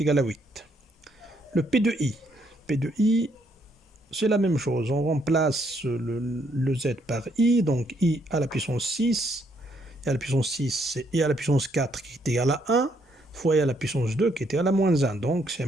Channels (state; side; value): normal; both; correlation 0.72